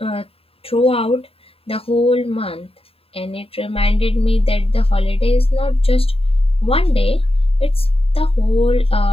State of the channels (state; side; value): late; right; 0.27 ms